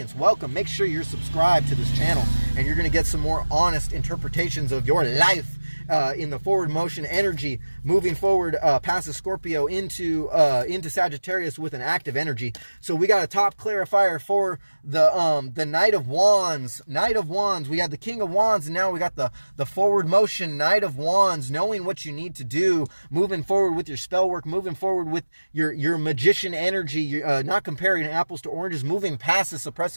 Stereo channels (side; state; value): both; inverted; correlation -1.00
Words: Welcome. Make sure you're subscribed to this channel, and you're going to get some more honest interpretations of your life in the forward motion energy, moving forward past the Scorpio into Sagittarius with an active energy. So we got a top clarifier for the Knight of Wands. Knight of Wands. We had the King of Wands, and now we got the forward motion Knight of Wands, knowing what you need to do, moving forward with your spell work, moving forward with your magician energy, not comparing apples to oranges, moving past the